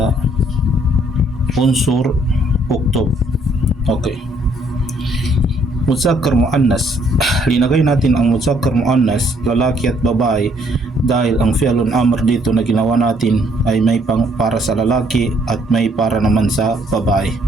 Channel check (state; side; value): normal; both; correlation 0.66